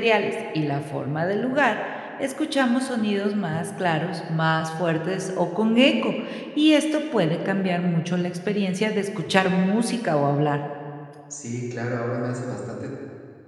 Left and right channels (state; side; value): identical; both; correlation 1.00